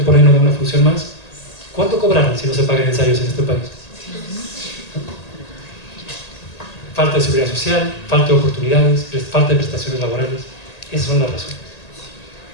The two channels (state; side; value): late; right; 1.8 ms